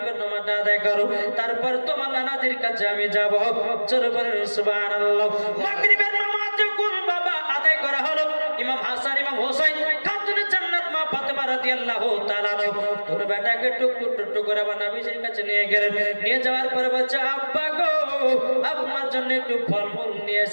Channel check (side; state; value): both; inverted; correlation -1.00